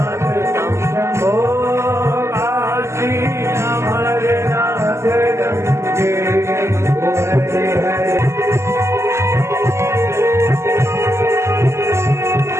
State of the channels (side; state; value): left; late; 0.13 ms